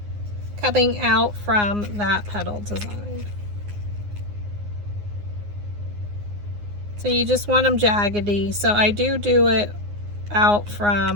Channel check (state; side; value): late; left; 9.7 ms